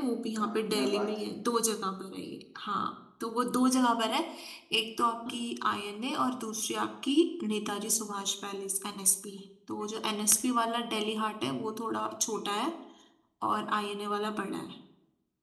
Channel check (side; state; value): both; identical; correlation 1.00